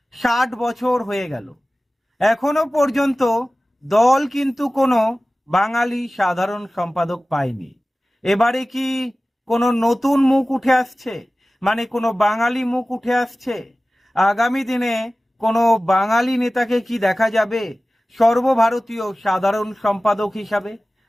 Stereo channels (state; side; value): normal; both; correlation 0.97